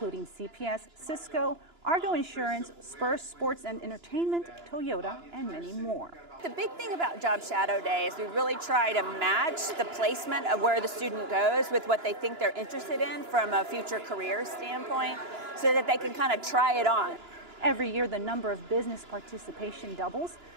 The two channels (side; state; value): left; late; 2.9 ms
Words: CPS, Cisco, Argo Insurance, Spurs Sports and Entertainment, Toyota, and many more. The big thing about Job Shadow Day is we really try to match the placement of where the student goes with what they think they're interested in from a future career standpoint so that they can kind of try it on. Every year, the number of business participation doubles,